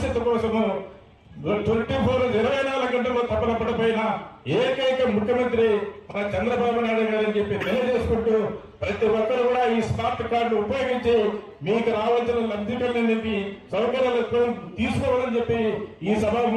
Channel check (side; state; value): both; identical; correlation 1.00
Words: కోసము 24 గంటల్లో తప్పన పడిపోయిన ఏకైక ముఖ్యమంత్రి మన చంద్రబాబు నాయుడు గారు అని చెప్పి తెలియజేసుకుంటూ ప్రతి ఒక్కరు కూడా ఈ స్మార్ట్ కార్డు ఉపయోగించి మీకు రావాల్సిన లబ్ధికరణ సౌకర్యాలు తీసుకోవాలని చెప్పి ఈ